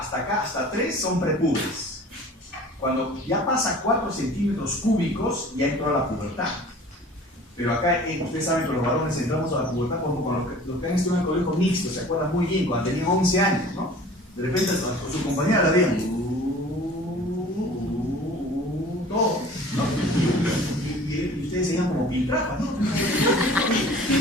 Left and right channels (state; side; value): normal; both; correlation 0.45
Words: acá, hasta 3 son prepúberes. Cuando ya pasa 4 centímetros cúbicos, ya entró a la pubertad. Pero acá, ustedes saben que los varones entramos a la pubertad como los que han estudiado en el colegio mixto, se acuerdan muy bien, cuando tenían 11 años, ¿no? De repente con su compañera la veían, todo, ¿no? Y ustedes se veían como piltrafas, ¿no?